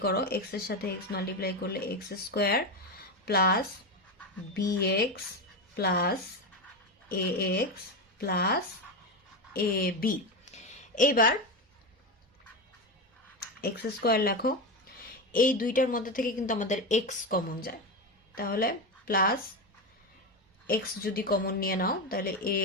করো, x এর সাথে x মাল্টিপ্লাই করলে x square plus bx plus ax plus ab। এবার x স্কয়ার লেখো, এই দুইটার মধ্যে থেকে কিন্তু আমাদের x কমন যায়, তাহলে প্লাস x যদি কমন নিয়ে নাও তাহলে a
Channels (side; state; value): both; normal; correlation 0.15